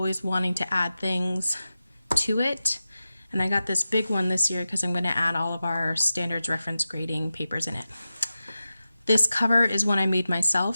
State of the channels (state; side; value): inverted; both; correlation -0.93